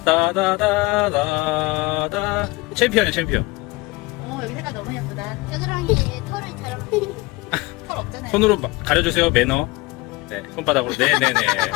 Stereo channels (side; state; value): right; quieter; 23.2 dB